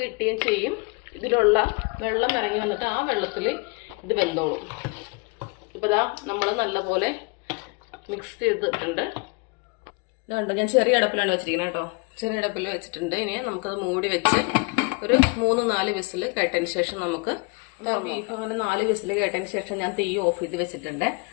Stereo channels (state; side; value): quieter; right; 30.4 dB